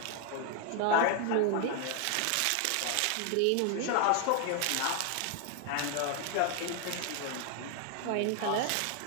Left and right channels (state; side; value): different; both; correlation 0.01